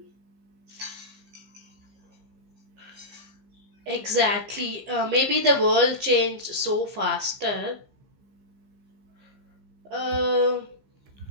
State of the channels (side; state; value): left; late; 15 ms